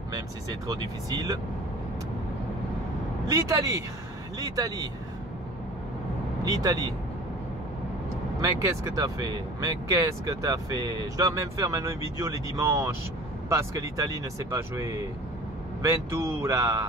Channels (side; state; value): both; normal; correlation 0.43